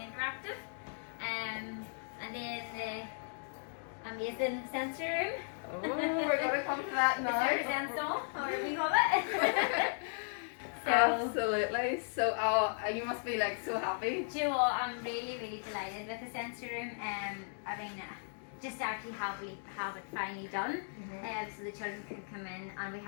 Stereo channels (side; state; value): right; silent; digital silence